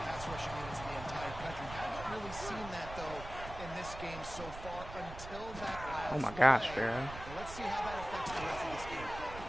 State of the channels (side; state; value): right; noise; rumble, 11 dB below the sound